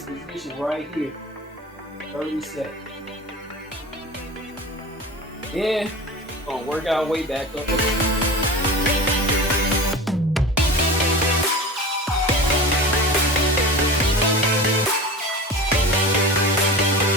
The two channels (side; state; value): both; normal; correlation 0.33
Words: position right here. 30 seconds. Then we're gonna work our way back up.